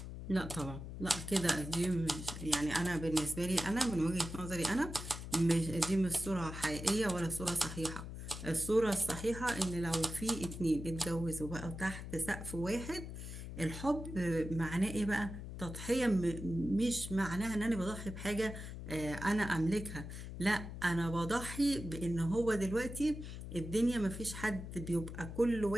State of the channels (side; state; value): left; noise; hum, 9 dB below the sound